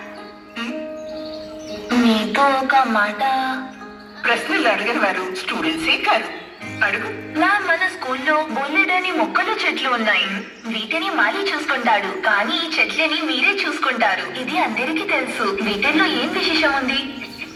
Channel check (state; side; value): identical; both; correlation 1.00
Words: మీతో ఒక మాట. ప్రశ్నలు అడిగిన వారు స్టూడెంట్సే కాదు. అడుగు. మ్యామ్, మన స్కూల్లో బొల్లెడని మొక్కలు చెట్లు ఉన్నాయి. వీటిని మాలి చూసుకుంటాడు, కానీ ఈ చెట్లని మీరే చూసుకుంటారు. ఇది అందరికీ తెలుసు. వీటిల్లో ఏం విశేషం ఉంది?